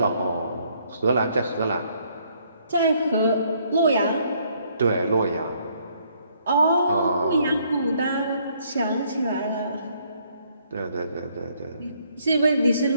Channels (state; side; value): inverted; both; correlation -0.68